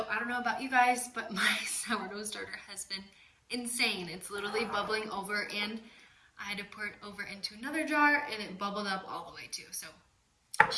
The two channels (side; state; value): both; identical; correlation 1.00